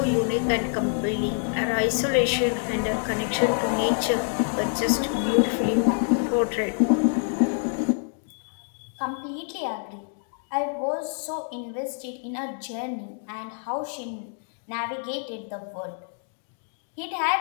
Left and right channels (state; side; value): silent; right; 61 dB below the other